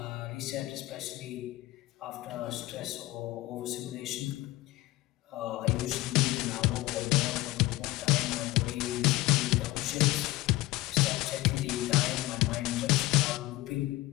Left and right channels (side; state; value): right; quieter; 18.5 dB